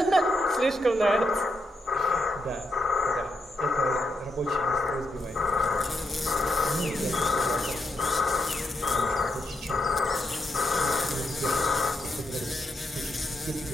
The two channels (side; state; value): both; normal; correlation 0.82